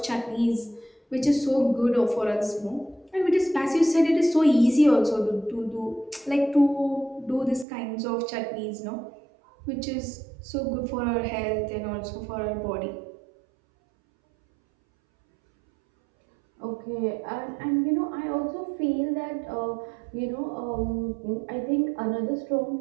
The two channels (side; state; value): left; drops out; at 7.7 s